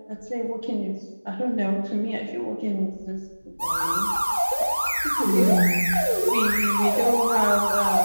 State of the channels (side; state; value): both; inverted; correlation -1.00